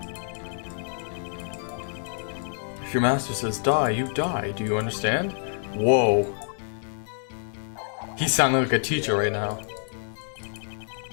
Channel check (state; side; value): silent; right; digital silence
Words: If your master says die, you die. Do you understand? Whoa. He's sounding like a teacher right now.